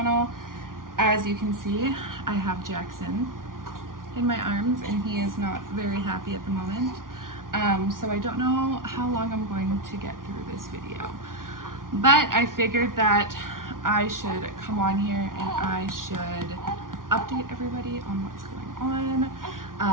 As you can see, I have Jackson in my arms and he is not very happy at the moment. So I don't know how long I'm going to get through this video, but I figured that I should come on here and I should update everybody on what's going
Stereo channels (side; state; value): left; late; 0.90 ms